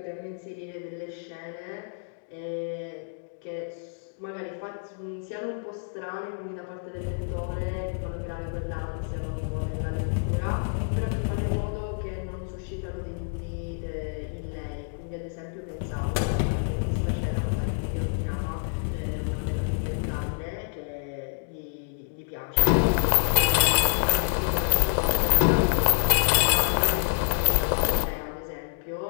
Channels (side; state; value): right; silent; digital silence